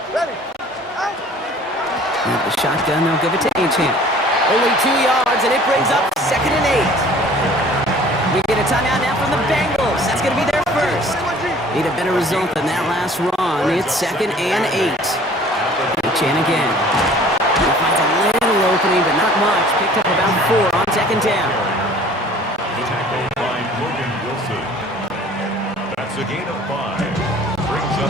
With the shotgun, they'll give it to Achane. Only 2 yards, and it brings up second and 8. We get a timeout now from the Bengals. That's going to be their first. Need a better result than that last run. It's second and 8. Achane again. He finds a little opening, but not much. Picked up about 4 on second down. Tackled by Logan Wilson. That's a gain of 5. Brings up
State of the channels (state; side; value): normal; both; correlation 0.50